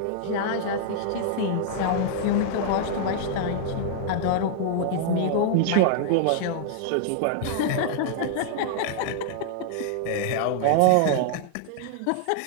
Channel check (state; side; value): different; both; correlation -0.01